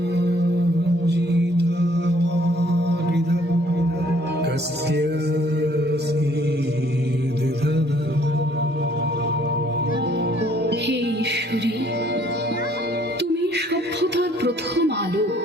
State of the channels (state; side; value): normal; both; correlation 0.62